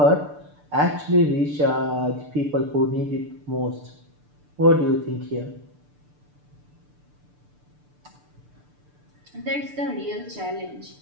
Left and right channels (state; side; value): late; left; 6.8 ms